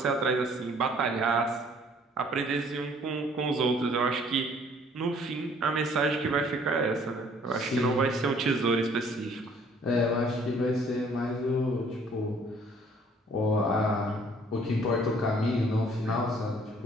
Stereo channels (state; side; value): normal; both; correlation 0.58